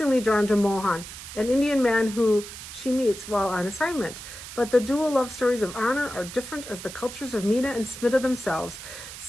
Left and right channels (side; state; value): right; noise; hiss, 12 dB below the sound